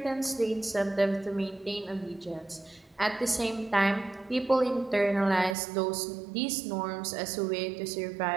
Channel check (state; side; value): drops out; left; at 5.6 s